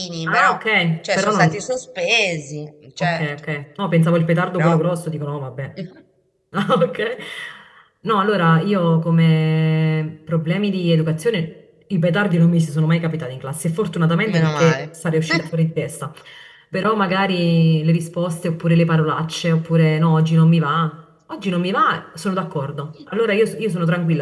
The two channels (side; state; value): both; identical; correlation 1.00